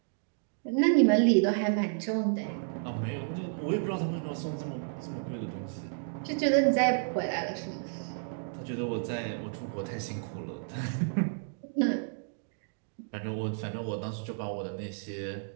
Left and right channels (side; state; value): left; silent; digital silence